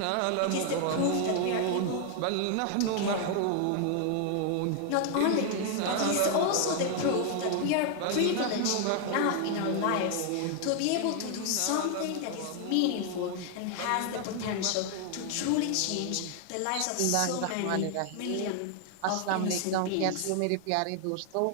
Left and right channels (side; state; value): both; different; correlation 0.00